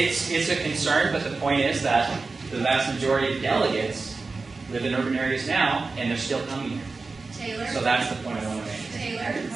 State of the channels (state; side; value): quieter; left; 4.0 dB